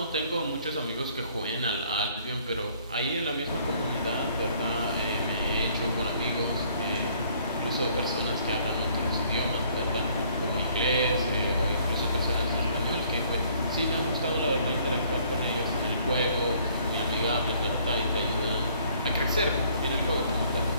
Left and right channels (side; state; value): both; inverted; correlation -0.61